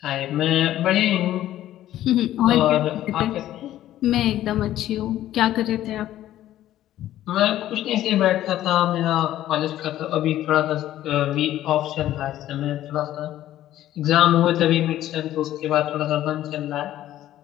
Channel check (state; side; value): quieter; right; 13.2 dB